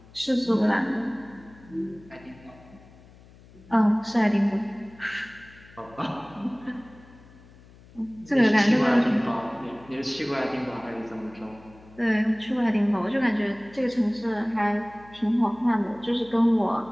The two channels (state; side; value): noise; left; hum, 23 dB below the sound